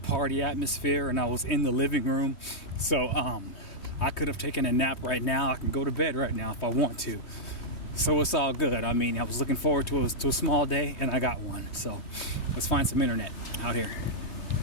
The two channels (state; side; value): late; right; 3.2 ms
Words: atmosphere and I was in the living room. So I could have taken a nap right now. I can go to bed right now if I want to. So it's all good. I mean, I was looking forward to a small day and I got one. So let's find some internet out here.